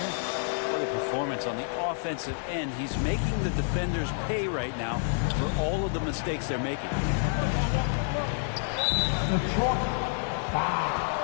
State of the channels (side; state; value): right; silent; digital silence